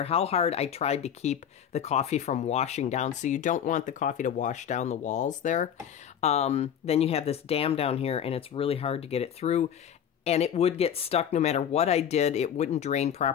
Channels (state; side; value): quieter; right; 8.9 dB